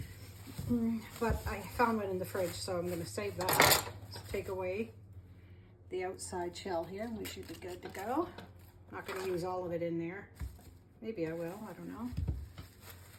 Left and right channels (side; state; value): both; identical; correlation 1.00